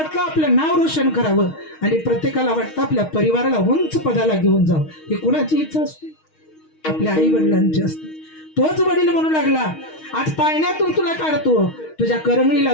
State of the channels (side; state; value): right; late; 6.4 ms